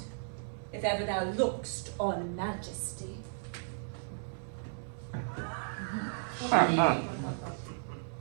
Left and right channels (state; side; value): silent; left; 55 dB below the other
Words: if ever thou look'st on majesty. She